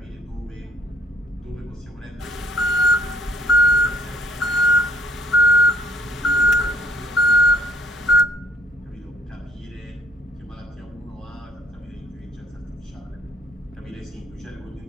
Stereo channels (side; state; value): both; normal; correlation 0.64